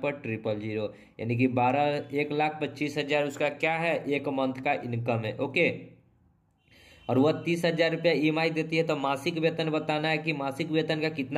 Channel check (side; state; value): both; identical; correlation 1.00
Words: पर 000, यानी कि 1,25,000 उसका क्या है, एक मंथ का इनकम है। ओके, और वह 30,000 रुपया ईएमआई देती है। तो मासिक वेतन बताना है कि मासिक वेतन का